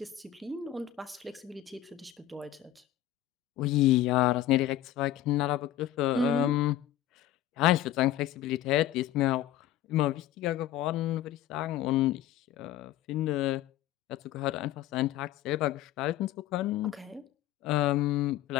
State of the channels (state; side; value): quieter; right; 12.5 dB